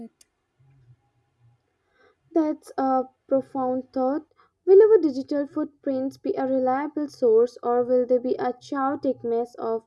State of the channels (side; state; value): both; identical; correlation 1.00